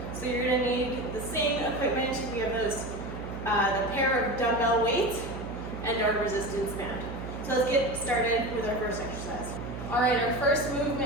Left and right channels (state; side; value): noise; right; hum, 8 dB below the sound